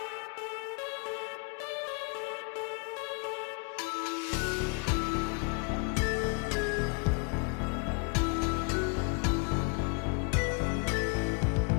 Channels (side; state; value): right; quieter; 35.0 dB